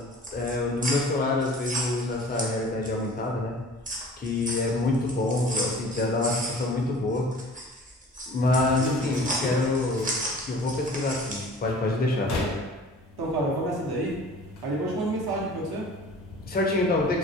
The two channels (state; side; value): normal; both; correlation 0.45